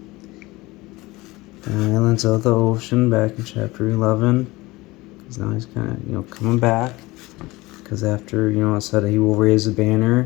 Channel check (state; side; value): quieter; right; 20.7 dB